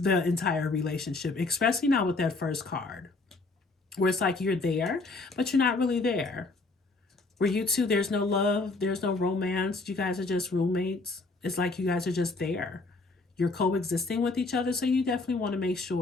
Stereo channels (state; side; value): quieter; right; 3.5 dB